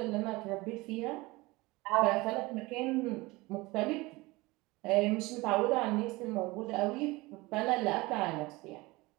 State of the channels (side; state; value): left; quieter; 22.1 dB